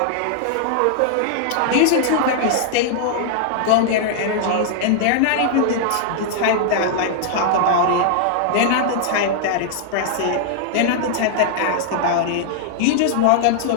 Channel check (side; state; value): both; different; correlation -0.01